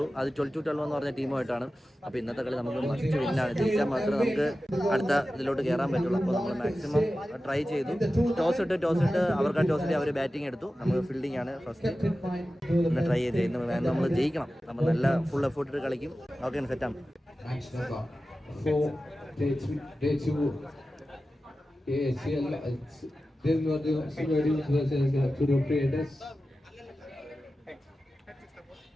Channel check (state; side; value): normal; both; correlation 0.94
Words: അത് 12-12 എന്ന് പറഞ്ഞ ടീമുമായിട്ടാണ്. അപ്പോൾ ഇന്നത്തെ കളി നമുക്ക് മസ്റ്റ് വിന്നാണ്. ജയിച്ചാൽ മാത്രമേ നമുക്ക് അടുത്ത ഇതിലോട്ട് കയറാൻ പറ്റുള്ളൂ. അപ്പോൾ നമ്മൾ മാക്സിമം ട്രൈ ചെയ്തു. ടോസ് ഇട്ട് അവർക്ക് ടോസ് ഇട്ട് അവർ ബാറ്റിംഗ് എടുത്തു. നമുക്ക് ഫീൽഡിംഗ് ആണ് ഫസ്റ്റ് ഒന്ന് ട്രൈ ചെയ്ത് നമ്മൾ ജയിക്കണം. നമ്മൾ നല്ല ഫുൾ എഫേർട്ട് ഇട്ട് കളിക്കും. ഓക്കെ, സെറ്റാണ്. ACL then what the Silver versus Tudor Creators.